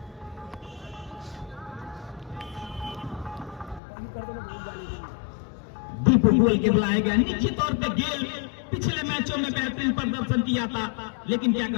दीपू गोयल के बुलाए गए। निश्चित तौर पे गेल पिछले मैचों में बेहतरीन प्रदर्शन किया था, लेकिन क्या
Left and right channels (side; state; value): right; drops out; at 3.8 s